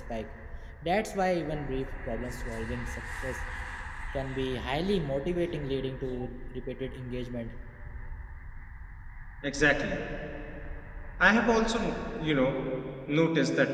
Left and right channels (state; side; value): identical; both; correlation 1.00